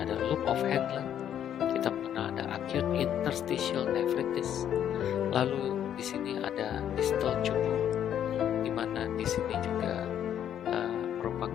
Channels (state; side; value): quieter; right; 9.9 dB